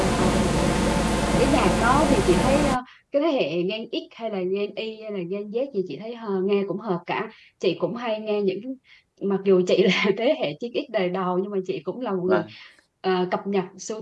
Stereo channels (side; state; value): both; identical; correlation 1.00